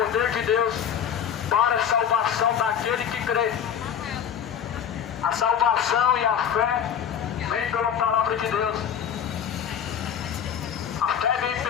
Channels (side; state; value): right; quieter; 8.5 dB